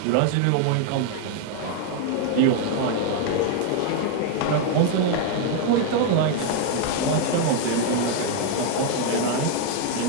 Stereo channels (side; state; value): both; different; correlation 0.00